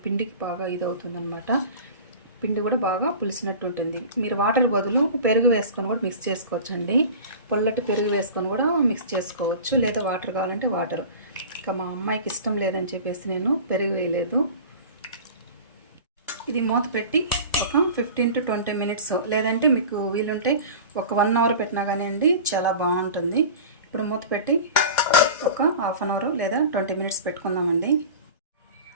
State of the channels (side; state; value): both; inverted; correlation -0.36